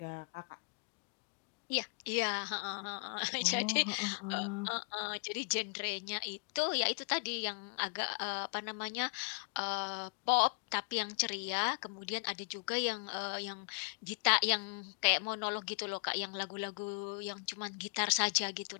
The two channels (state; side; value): quieter; right; 39.1 dB